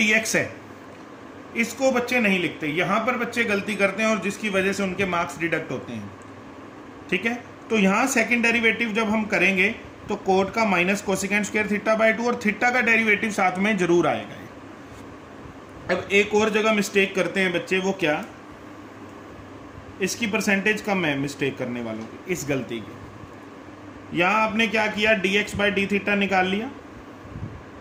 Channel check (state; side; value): identical; both; correlation 1.00